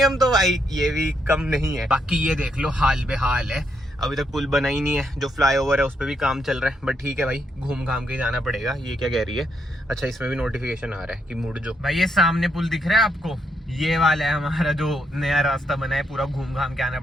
तो भाई ये भी कम नहीं है। बाकी ये देख लो हाल बेहाल है, अभी तक पुल बना ही नहीं है, जो फ्लाईओवर है उस पर भी काम चल रहा है। बट ठीक है भाई, घूम घाम के जाना पड़ेगा। ये क्या कह रही है, अच्छा इसमें भी नोटिफिकेशन आ रहा है कि मुड़ जो। भाई ये सामने पुल दिख रहा है आपको, ये वाला है हमारा जो नया रास्ता बना है, पूरा घूम घाम के आना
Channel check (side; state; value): both; normal; correlation 0.78